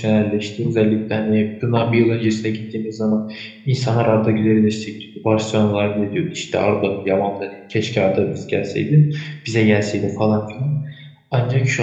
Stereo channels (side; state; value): both; identical; correlation 1.00